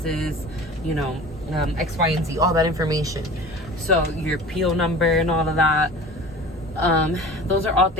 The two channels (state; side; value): normal; both; correlation 0.39